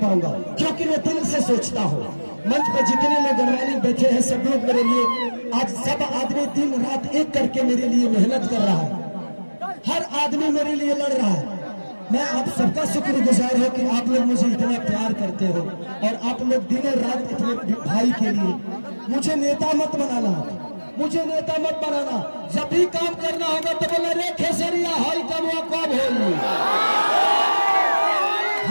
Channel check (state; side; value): inverted; both; correlation -1.00